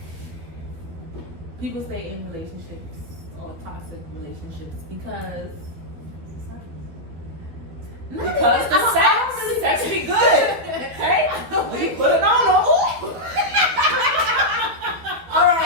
people stay in relationships or toxic relationships because the sex be good. Okay, we put it on them. All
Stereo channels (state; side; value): late; left; 12 ms